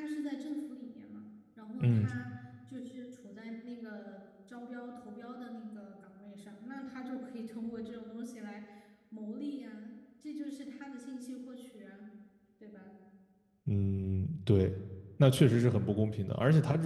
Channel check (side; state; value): both; identical; correlation 1.00